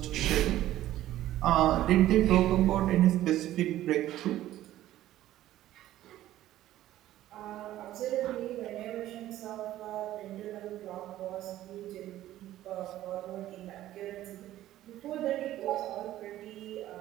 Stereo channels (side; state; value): left; quieter; 13.9 dB